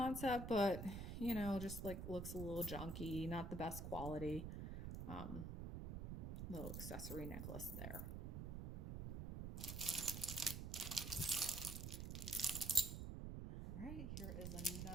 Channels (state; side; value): noise; right; rumble, 4 dB below the sound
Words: but you know, just like looks a little junky, not the best quality. Little accessory necklace there. All right, here is